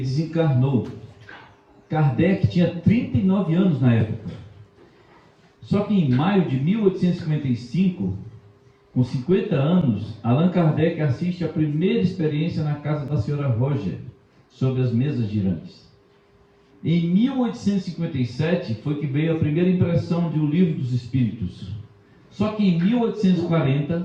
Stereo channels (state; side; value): identical; both; correlation 1.00